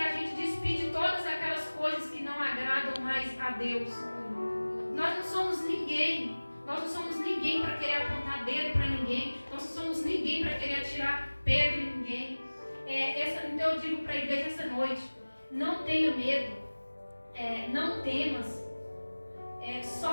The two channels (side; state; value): both; inverted; correlation -1.00